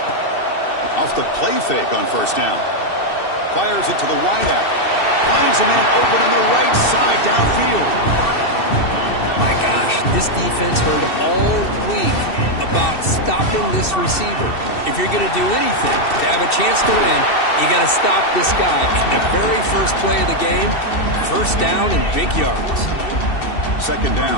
Off the play fake on first down. Fires it to the wideout. Finds a man open on the right side downfield. My gosh, this defense heard all week about stopping this receiver. If you're going to do anything to have a chance to win, you got to stop this guy. And the very first play of the game, first down and big yards. Second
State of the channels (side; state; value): right; late; 2.7 ms